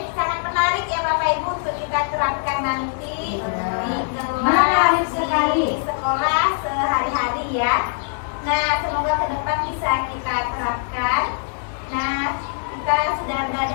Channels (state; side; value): silent; right; digital silence